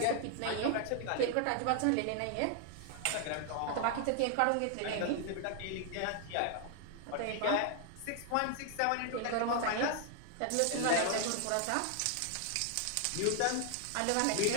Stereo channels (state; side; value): different; both; correlation 0.00